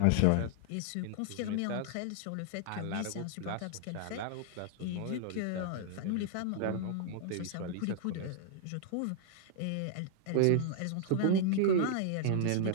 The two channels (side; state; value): both; different; correlation -0.01